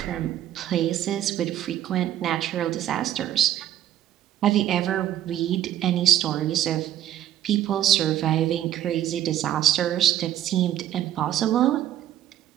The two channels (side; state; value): left; quieter; 11.9 dB